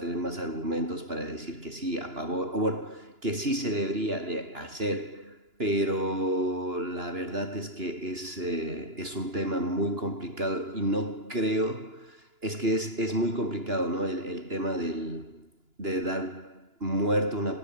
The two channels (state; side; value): late; left; 2.9 ms